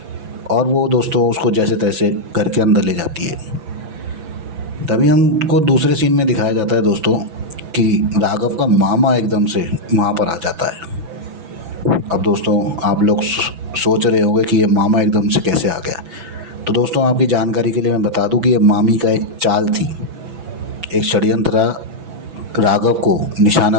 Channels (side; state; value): left; late; 6.0 ms